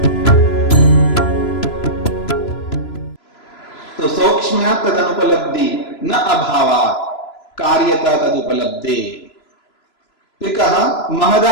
तो सौक्ष्म्या तदनुपलब्धि न अभावात् कार्यता तदुपलब्धे। फिर कहा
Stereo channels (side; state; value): right; late; 3.0 ms